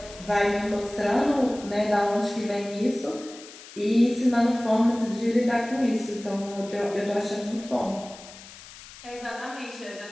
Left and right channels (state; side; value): noise; left; hiss, 17 dB below the sound